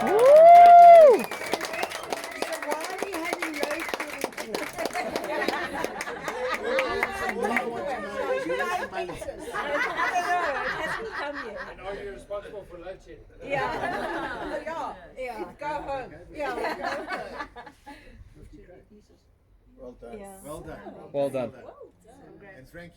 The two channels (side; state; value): both; identical; correlation 1.00